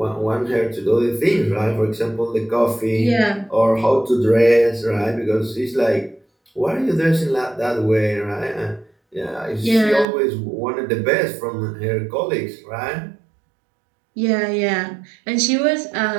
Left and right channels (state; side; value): drops out; left; at 10.1 s